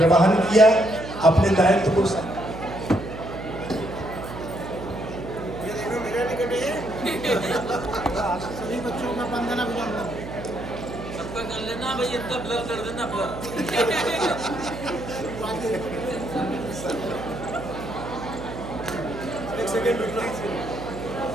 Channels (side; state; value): right; noise; hum, 10 dB below the sound